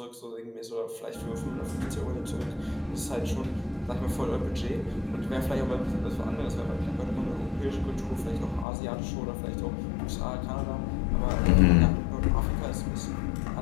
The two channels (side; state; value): right; drops out; at 8.7 s